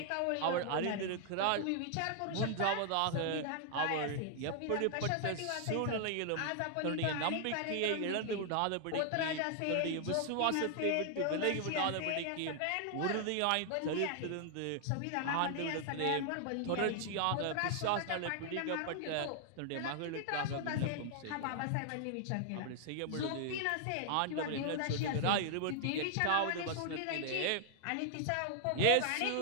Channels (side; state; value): both; different; correlation 0.00